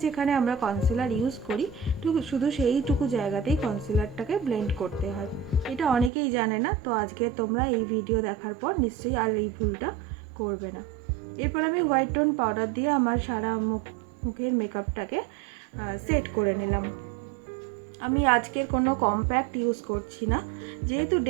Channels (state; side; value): drops out; left; at 6.1 s